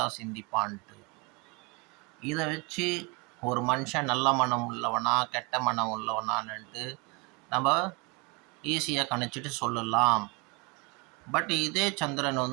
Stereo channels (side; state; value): left; quieter; 28.3 dB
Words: சிந்திப்பான்ட்டு இதை வச்சு ஒரு மனுஷன் நல்ல மனம் உள்ளவனா கெட்ட மனம் உள்ளவனான்ட்டு நம்ம ஈஸியாக கணிச்சிட்டு சொல்லலாம். பட் இதே சந்திரன்